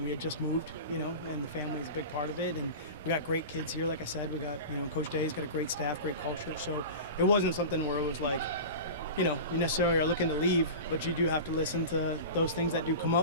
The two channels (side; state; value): both; inverted; correlation -0.30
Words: just moved. And the family is a big part of it. And we got great kids here. Like I said, we got Coach Day's got a great staff, great culture. So it wasn't something where it was like, you necessarily are looking to leave, but you do have to listen to those things that do come